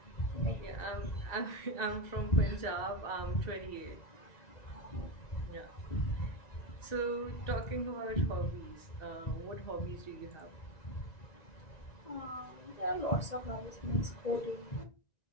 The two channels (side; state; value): right; late; 1.9 ms